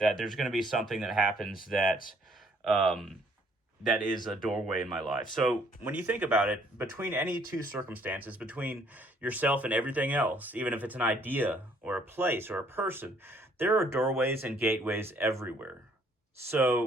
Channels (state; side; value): normal; both; correlation 0.63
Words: there's going to be something that happens that is a doorway in my life. So when you think about it, between any two circumstances, between yourself and everything else, even if it's an idea or a place or a person, there are doorways and gateways everywhere.